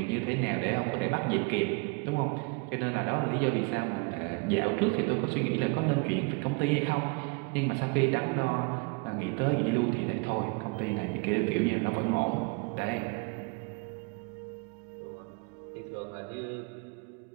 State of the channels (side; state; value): left; quieter; 29.3 dB